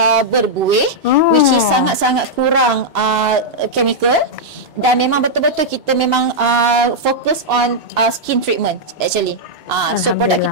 berbuih, which is sangat-sangat kurang chemical. Dan memang betul-betul kita memang fokus on skin treatment actually. So produk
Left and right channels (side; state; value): both; normal; correlation -0.05